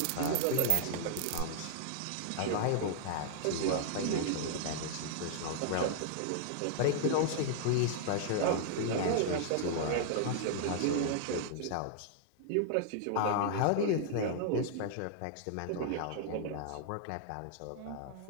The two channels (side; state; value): both; different; correlation -0.01